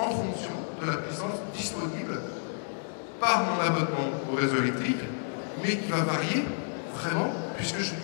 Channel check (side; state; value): right; silent; digital silence